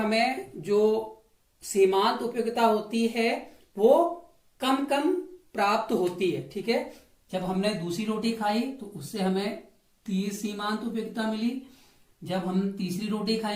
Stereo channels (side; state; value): both; identical; correlation 1.00